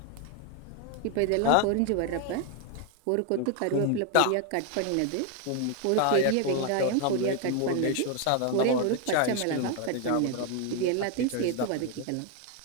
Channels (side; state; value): both; different; correlation 0.01